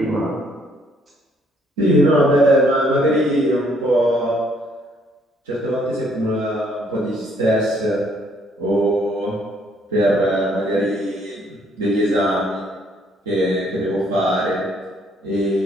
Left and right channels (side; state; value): both; normal; correlation 0.66